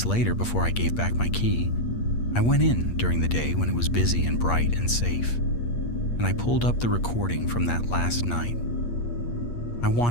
later, before I gave back my key, I went in during the day when it was busy and bright and safe, and I pulled up the recording from that last night. I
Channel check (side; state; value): right; late; 8.5 ms